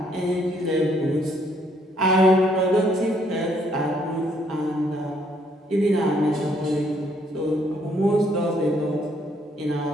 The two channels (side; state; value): both; normal; correlation 0.68